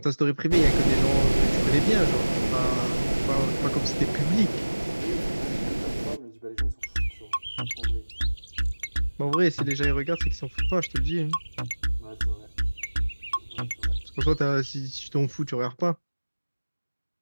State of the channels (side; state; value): both; inverted; correlation -1.00